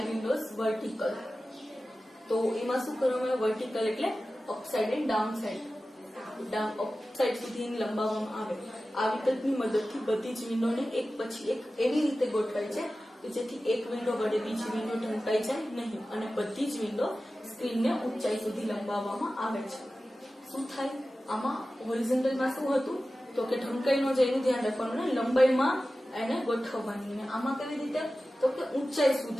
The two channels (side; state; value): both; normal; correlation 0.95